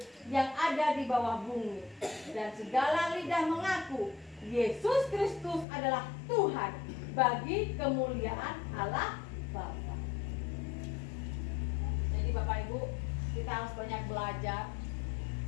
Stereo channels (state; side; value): drops out; right; at 5.7 s